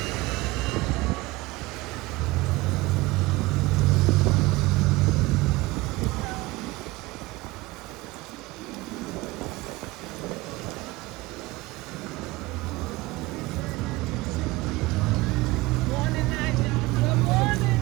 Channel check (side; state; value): left; quieter; 20.7 dB